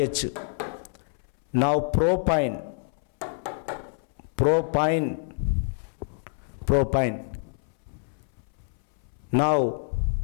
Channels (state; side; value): silent; right; 60 dB below the other